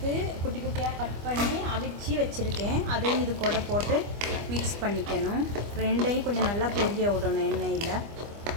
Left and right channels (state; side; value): late; left; 25 ms